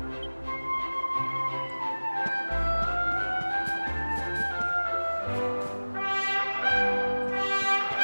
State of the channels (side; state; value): both; inverted; correlation -1.00